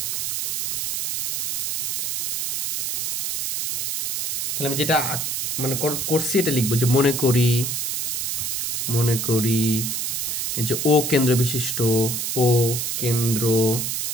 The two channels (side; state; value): right; noise; hiss, 1 dB below the sound